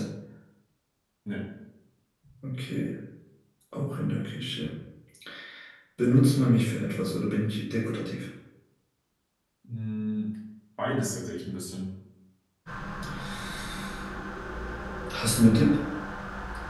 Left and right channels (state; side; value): identical; both; correlation 1.00